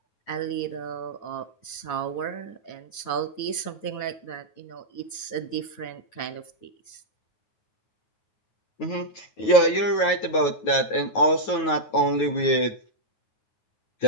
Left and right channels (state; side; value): late; right; 9.3 ms